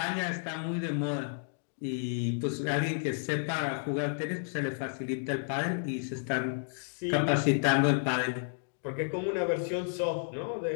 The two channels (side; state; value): right; silent; digital silence